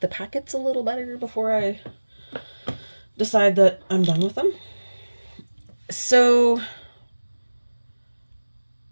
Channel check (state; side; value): inverted; both; correlation -1.00